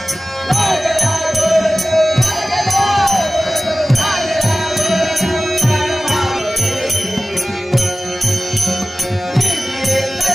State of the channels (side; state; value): both; normal; correlation 0.96